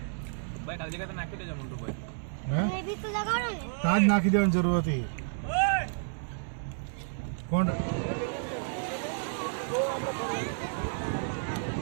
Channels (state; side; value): silent; left; 57 dB below the other